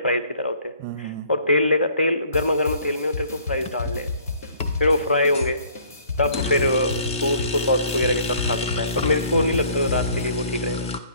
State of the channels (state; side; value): inverted; both; correlation -0.56